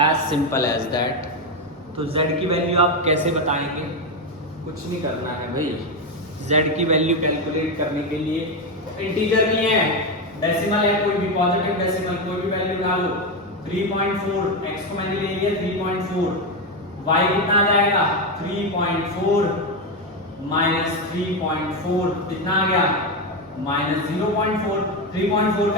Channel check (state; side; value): normal; both; correlation 0.10